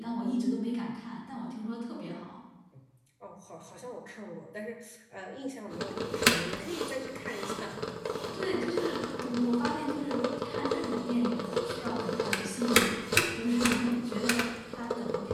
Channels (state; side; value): identical; both; correlation 1.00